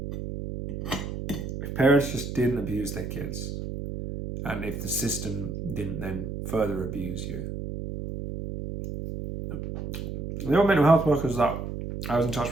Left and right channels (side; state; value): right; noise; hum, 6 dB below the sound